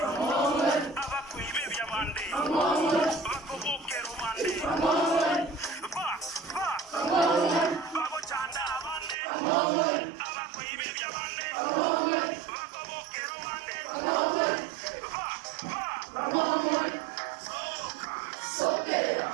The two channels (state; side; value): drops out; left; at 9.2 s